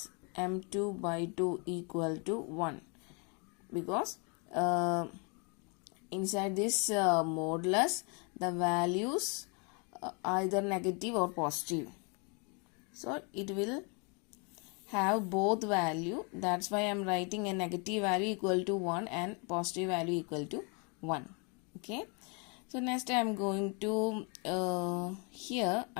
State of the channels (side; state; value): right; quieter; 34.3 dB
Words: m2 by 2 equal to 1, because inside this modulus the values either negative or positive, so it will have both value. That's why I am writing a negative value equal to 1 and positive value equal to 1. Okay, so next I am going to here